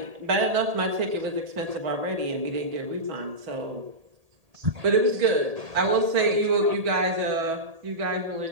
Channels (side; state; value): left; late; 1.8 ms